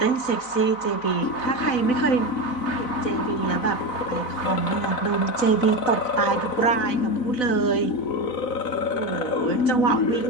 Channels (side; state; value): right; late; 4.0 ms